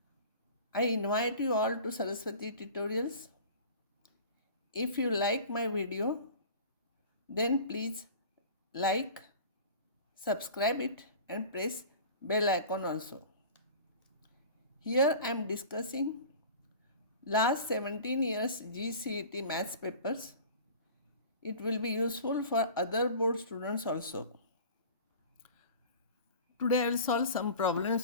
I invite you all to Saraswati Tutorials. If you like my video, then please like, subscribe it and press bell icon also. Here I am discussing last 17 years C.E.T maths papers. It will be useful for other board students also. Today I will solve some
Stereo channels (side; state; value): both; inverted; correlation -0.40